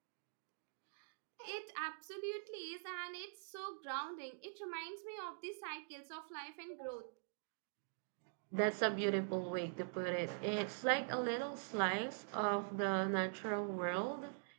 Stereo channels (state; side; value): silent; left; digital silence